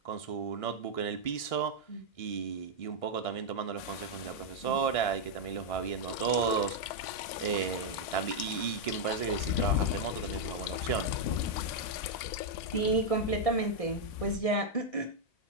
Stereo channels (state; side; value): late; right; 1.6 ms